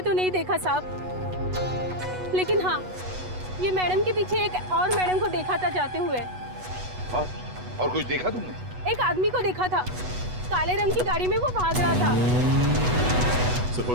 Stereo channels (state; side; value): late; left; 8.1 ms